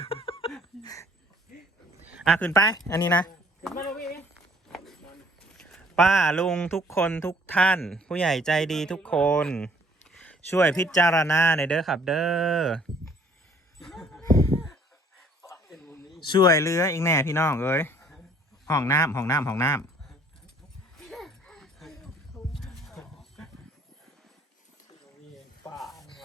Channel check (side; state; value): both; normal; correlation 0.59